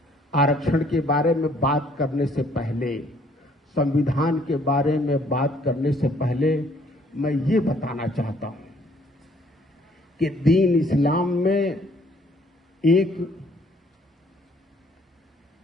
आरक्षण के बारे में बात करने से पहले, संविधान के बारे में बात करने से पहले मैं ये बताना चाहता हूं कि दीन इस्लाम में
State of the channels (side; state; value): both; normal; correlation 0.62